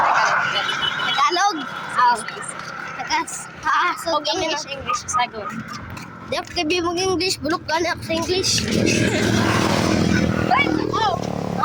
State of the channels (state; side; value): identical; both; correlation 1.00